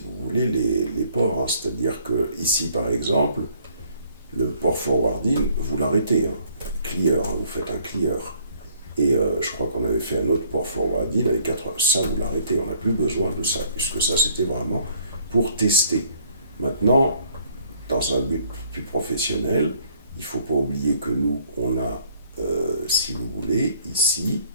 voulez, les ports. Hein. C'est-à-dire que ici, par exemple, le port forwarding, vous l'arrêtez. Hein. Clear, hein, vous faites un clear. Et je crois qu'on avait fait un autre port forwarding avec 4 heures. Ça, vous l'arrêtez. On n'a plus besoin de ça, puisque ça, c'était vraiment pour tester. Maintenant, dans un but plus professionnel, il ne faut pas oublier que nous, on a, si vous voulez, ici,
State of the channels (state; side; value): inverted; both; correlation -0.61